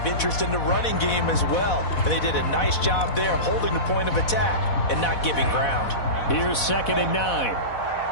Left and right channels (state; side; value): late; right; 4.1 ms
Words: interest in the running game as well. And they did a nice job there of holding the point of attack and not giving ground. Here's 2nd and 9.